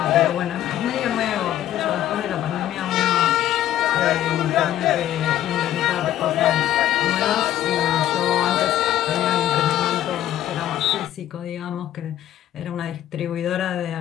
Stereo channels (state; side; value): quieter; right; 12.3 dB